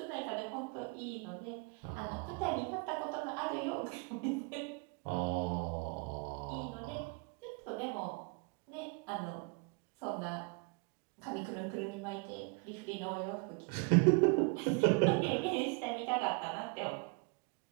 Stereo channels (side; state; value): left; quieter; 31.1 dB